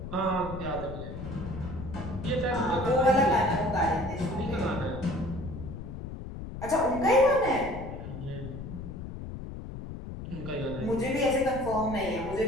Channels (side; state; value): left; noise; rumble, 9 dB below the sound